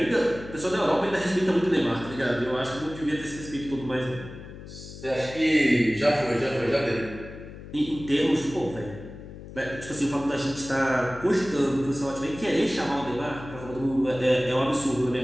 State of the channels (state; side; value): noise; left; hum, 14 dB below the sound